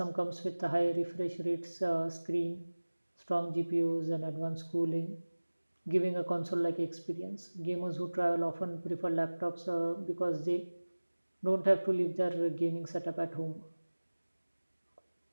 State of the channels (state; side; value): inverted; both; correlation -1.00